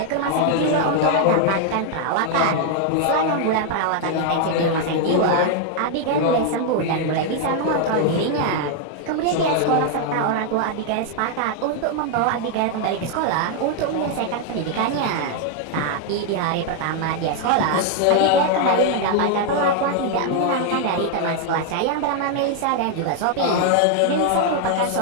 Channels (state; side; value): different; both; correlation 0.00